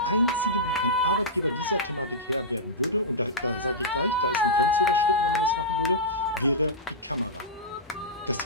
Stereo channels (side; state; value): both; normal; correlation -0.13